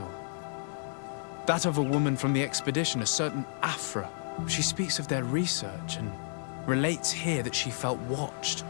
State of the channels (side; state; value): right; silent; digital silence